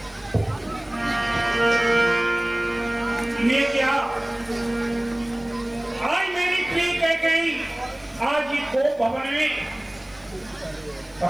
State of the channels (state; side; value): noise; left; hiss, 30 dB below the sound